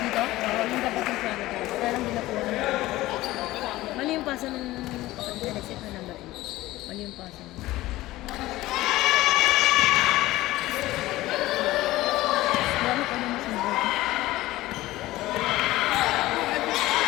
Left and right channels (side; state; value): right; quieter; 17.2 dB